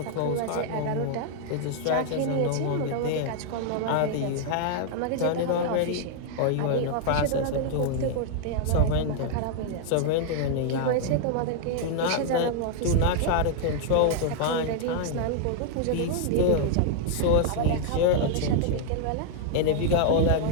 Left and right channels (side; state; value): both; different; correlation 0.00